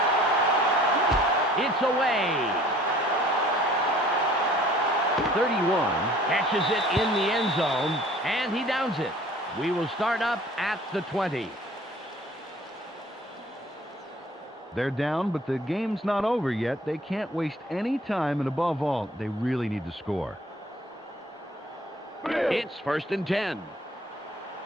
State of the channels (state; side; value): normal; both; correlation 0.52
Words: It's away. 31 catches it in the end zone, and he downs it. We will start up at the 20. They're down, but the game's not over yet. They can't waste any time, and above all, they really need to score. It's 1st and 10.